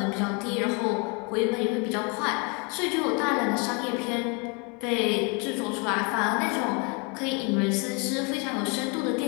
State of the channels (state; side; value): quieter; right; 33.0 dB